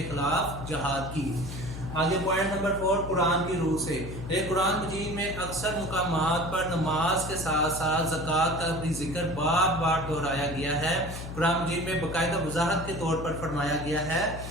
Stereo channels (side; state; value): left; noise; hum, 9 dB below the sound